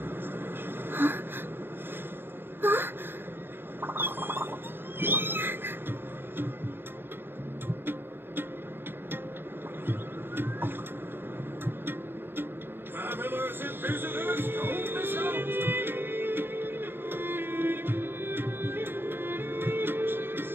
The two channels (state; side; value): late; left; 0.10 ms